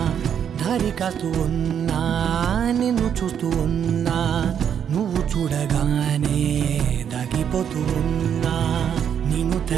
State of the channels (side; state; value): left; quieter; 8.4 dB